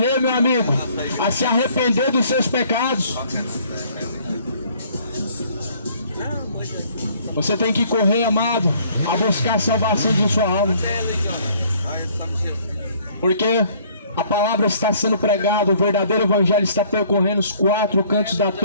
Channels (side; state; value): both; inverted; correlation -0.59